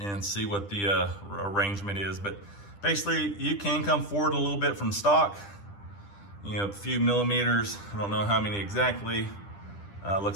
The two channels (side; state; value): right; late; 10 ms